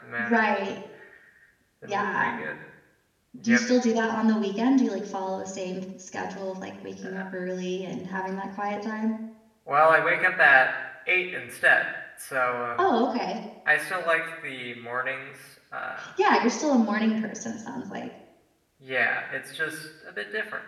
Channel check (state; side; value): identical; both; correlation 1.00